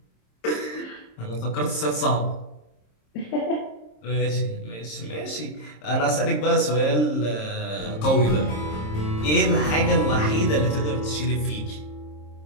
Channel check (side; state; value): right; late; 26 ms